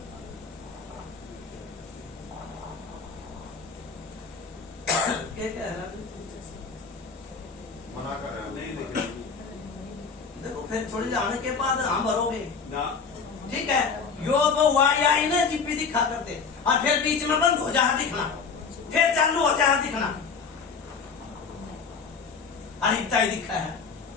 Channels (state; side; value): quieter; right; 5.5 dB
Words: क्या कह रहा है? मना कर रहे नहीं हैं। देखे देखो फिर थोड़ी जाने के बाद हम भरोगे, ना। ठीक है। यो वो वाई आई ना जीपी दिखा करते, और फिर बीच में बंद हो जहाँ दिखना, फिर चालू हो जहाँ दिखना। अरे इतना ही दिखा है,